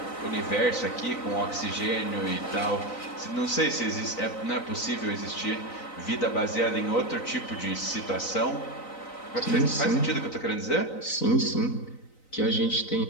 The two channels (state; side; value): late; right; 3.9 ms